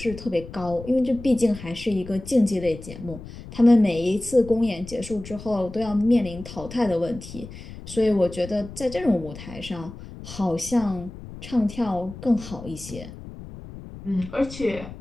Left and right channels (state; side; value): noise; left; rumble, 14 dB below the sound